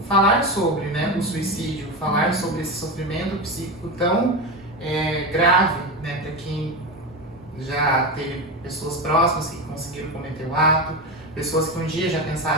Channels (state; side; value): normal; both; correlation 0.19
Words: falar sobre, né, o suicídio, falar sobre esse sofrimento psíquico tão grave, né, para quem já teve pessoas próximas que conseguiram cometer o ato, pessoas que um dia já